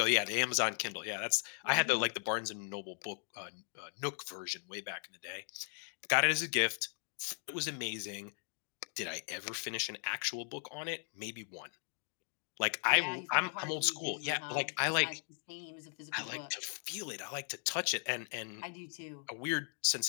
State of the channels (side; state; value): right; silent; 53 dB below the other